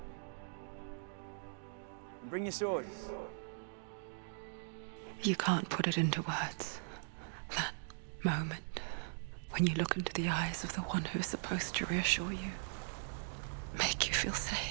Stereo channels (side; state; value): left; silent; digital silence